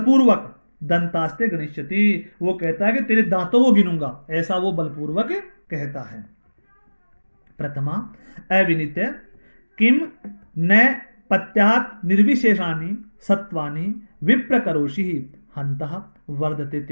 दंतास्ते गणिष्यति, वो कहता है कि तेरे दांतों को गिनूंगा, ऐसा वो बलपूर्वक कहता है। प्रथमा अविनित किम न पत्यात निर्विशेषानि सत्वानि विप्रकरोषि हन्तः वर्धते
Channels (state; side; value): inverted; both; correlation -1.00